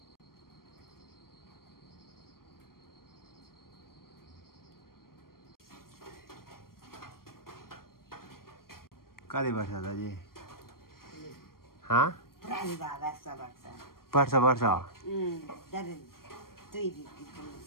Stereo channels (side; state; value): right; late; 0.93 ms